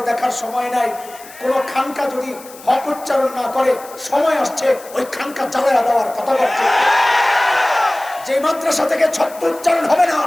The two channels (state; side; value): noise; left; hiss, 19 dB below the sound